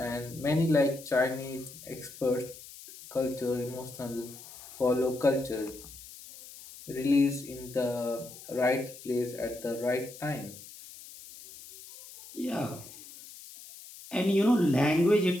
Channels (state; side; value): noise; left; hiss, 17 dB below the sound